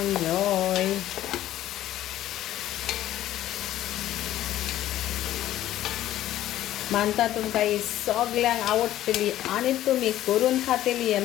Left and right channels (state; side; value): quieter; right; 13.4 dB